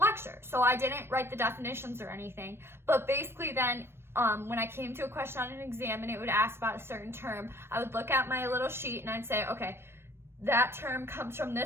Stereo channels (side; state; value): left; late; 0.12 ms